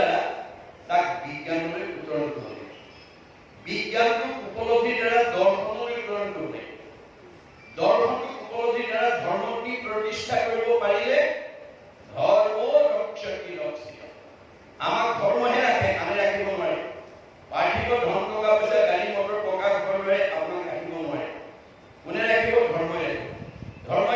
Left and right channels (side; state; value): both; identical; correlation 1.00